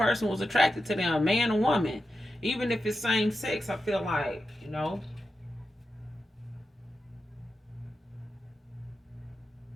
was attracted to them, man or woman. Even if it's same sex, I feel like,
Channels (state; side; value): normal; both; correlation 0.90